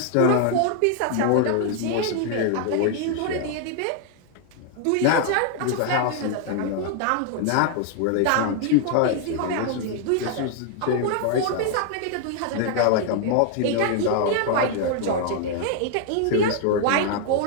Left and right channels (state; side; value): different; both; correlation 0.00